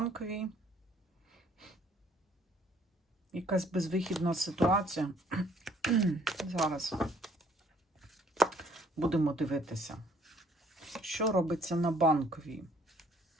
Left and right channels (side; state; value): both; normal; correlation 0.61